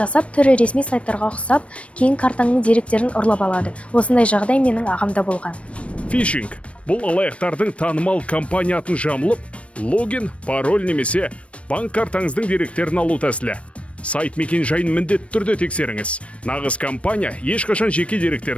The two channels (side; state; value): right; late; 0.062 ms